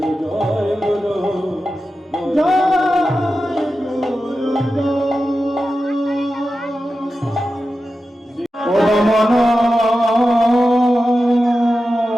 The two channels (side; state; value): both; normal; correlation 0.92